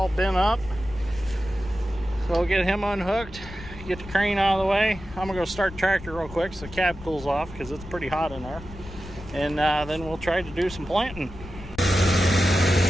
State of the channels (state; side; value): noise; left; rumble, 15 dB below the sound